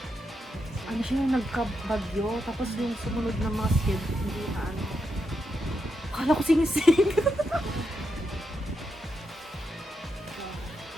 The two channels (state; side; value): normal; both; correlation 0.84